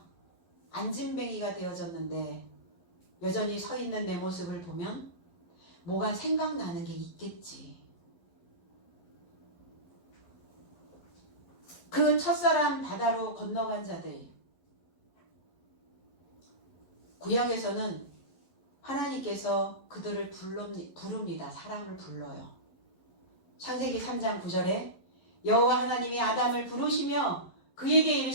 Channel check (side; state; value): right; late; 11 ms